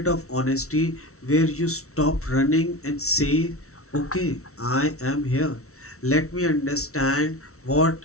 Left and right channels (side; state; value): right; late; 0.63 ms